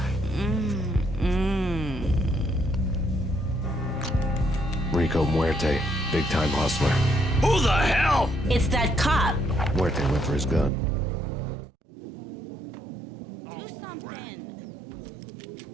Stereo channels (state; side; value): drops out; left; at 10.7 s